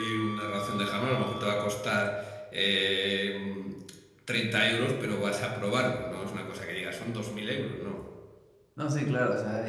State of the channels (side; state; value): both; identical; correlation 1.00